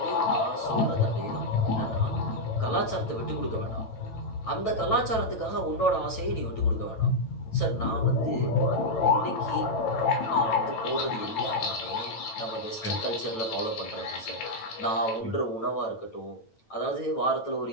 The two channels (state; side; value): late; right; 9.0 ms